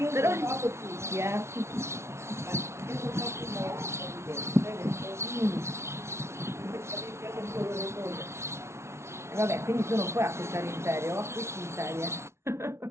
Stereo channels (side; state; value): left; late; 0.13 ms